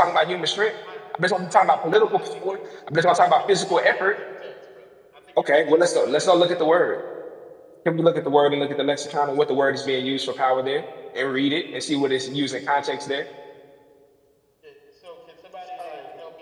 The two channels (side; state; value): both; identical; correlation 1.00